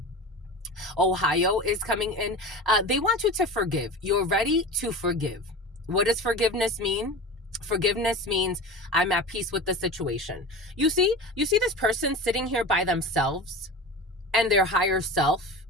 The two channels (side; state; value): both; normal; correlation 0.31